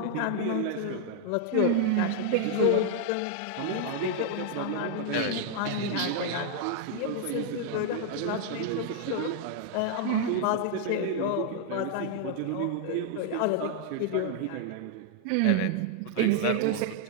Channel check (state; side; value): different; both; correlation 0.00